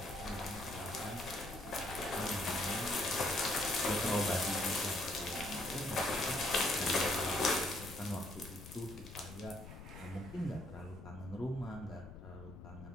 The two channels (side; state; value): left; noise; rumble, 13 dB below the sound